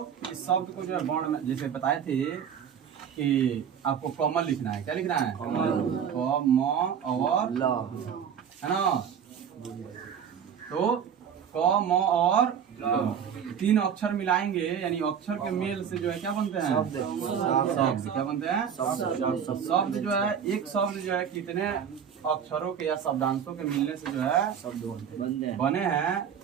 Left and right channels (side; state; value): left; quieter; 8.0 dB